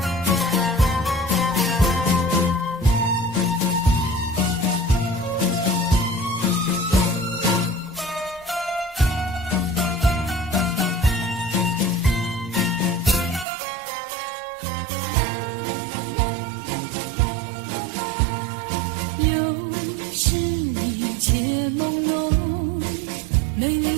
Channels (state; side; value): drops out; left; at 13.5 s